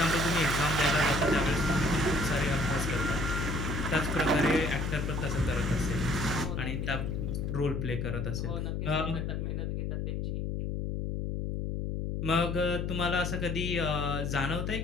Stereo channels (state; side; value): noise; left; hum, 2 dB below the sound